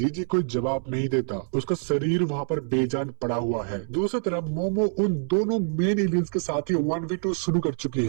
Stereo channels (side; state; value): left; silent; 61 dB below the other